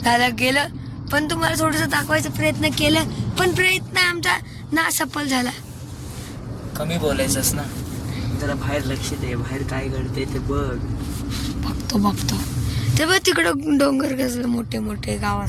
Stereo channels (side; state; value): both; identical; correlation 1.00